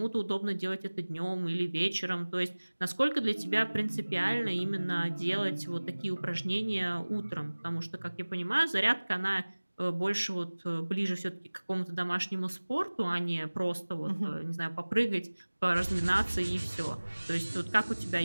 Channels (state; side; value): inverted; both; correlation -1.00